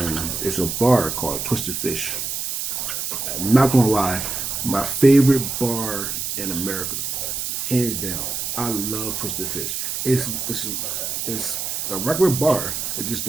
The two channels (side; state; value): right; noise; hiss, 3 dB below the sound